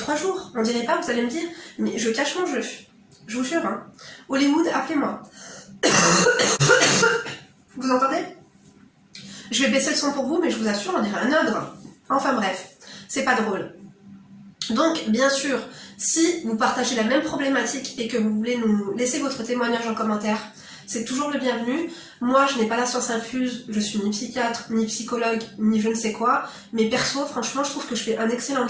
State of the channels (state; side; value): identical; both; correlation 1.00